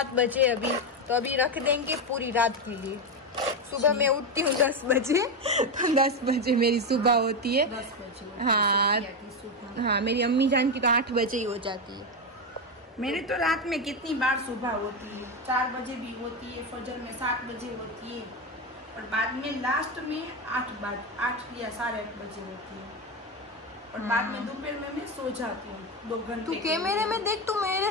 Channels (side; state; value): both; normal; correlation 0.11